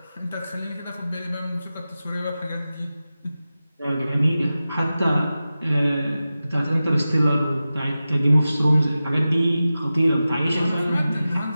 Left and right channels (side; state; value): both; inverted; correlation -0.94